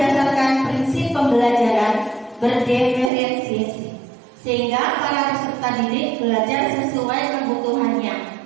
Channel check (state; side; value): drops out; left; at 3.1 s